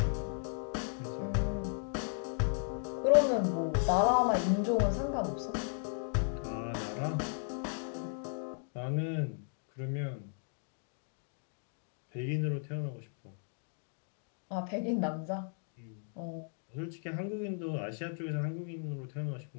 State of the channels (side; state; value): right; silent; 54 dB below the other